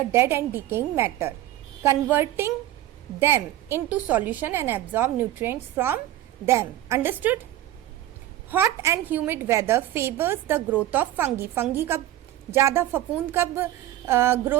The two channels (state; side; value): quieter; left; 13.9 dB